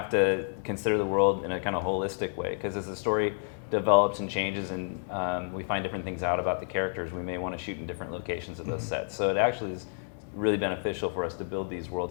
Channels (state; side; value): silent; right; digital silence